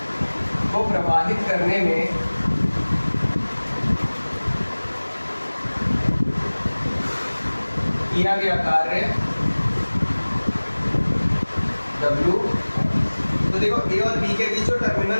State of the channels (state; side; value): inverted; both; correlation -1.00